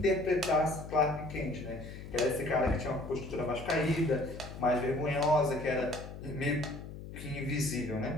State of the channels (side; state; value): left; noise; hum, 12 dB below the sound